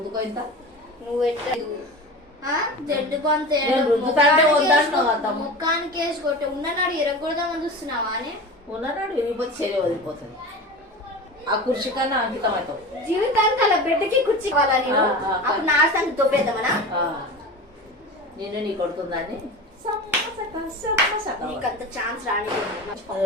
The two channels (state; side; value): normal; both; correlation 0.31